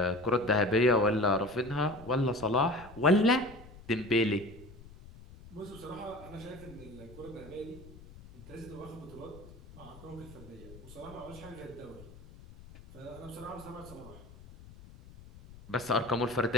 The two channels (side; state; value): left; noise; rumble, 19 dB below the sound